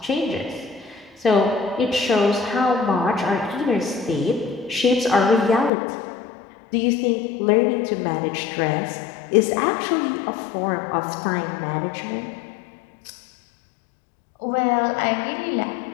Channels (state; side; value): drops out; right; at 5.7 s